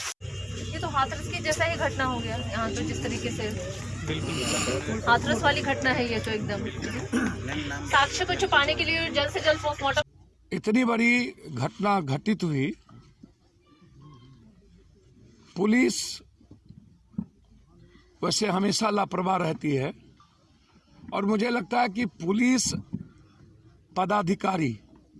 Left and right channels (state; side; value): identical; both; correlation 1.00